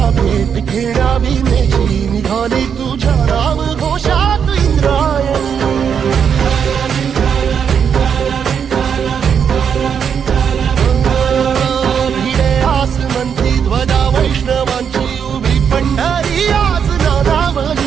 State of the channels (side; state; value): left; quieter; 7.4 dB